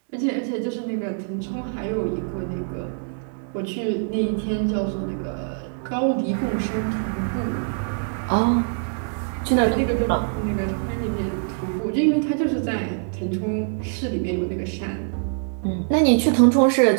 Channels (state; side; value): silent; left; 63 dB below the other